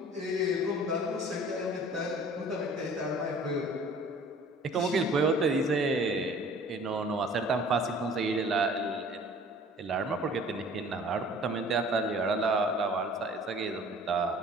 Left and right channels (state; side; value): normal; both; correlation 0.49